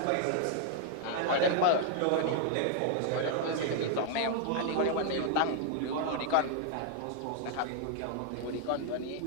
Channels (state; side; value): different; both; correlation 0.00